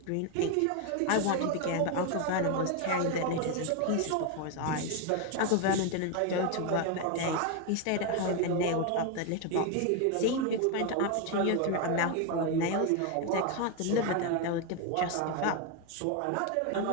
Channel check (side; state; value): both; different; correlation 0.01